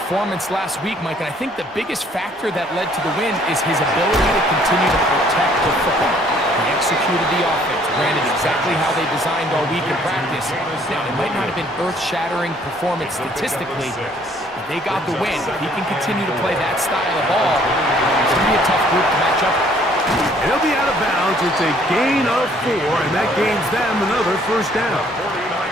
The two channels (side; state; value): both; normal; correlation 0.61